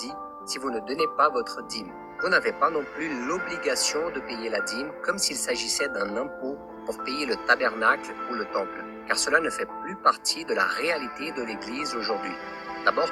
si vous ne donnez pas votre dîme. Vous n'avez pas non plus l'obligation de payer la dîme comme s'il s'agissait d'un impôt pour payer le tabernacle ou le temple, car cela ne fait plus partie de la réalité de l'Église aujourd'hui. D'abord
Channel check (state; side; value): identical; both; correlation 1.00